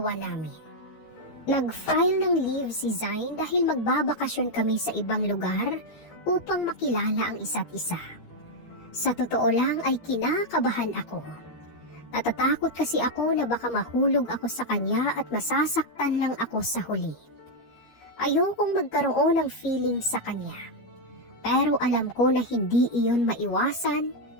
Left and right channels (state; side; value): late; right; 13 ms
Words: namin. Nag-file ng leave si Zain dahil magbabakasyon kami sa ibang lugar upang makilala ang isa't isa. Sa totoo lang ay kinakabahan ako. Natatakot kasi ako na baka mahulog ako sa kanya at masasaktan lang ako sa huli. Ayokong magkaroon ng feeling sa kanya. Pero alam ko na hindi iyon maiwasan,